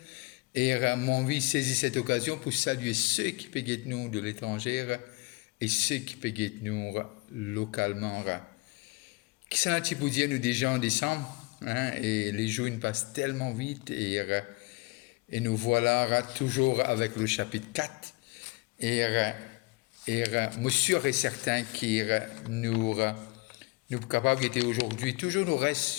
Et mon vie saisit cette occasion pour saluer ceux qui payent nous de l'étranger et ceux qui payent nous localement. Qui s'en a-t-il pour dire nous déjà en décembre et les jours nous passent tellement vite et nous voilà toujours avec le chapitre 4 et moi sûr et certain qu'il nous capable d'être aujourd'hui toujours nous reste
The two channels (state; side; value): quieter; right; 25.1 dB